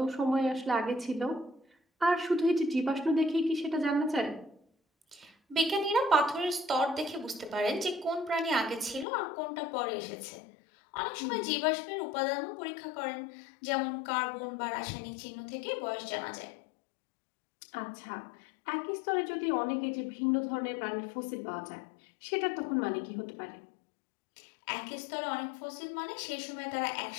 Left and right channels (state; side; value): drops out; right; at 9.1 s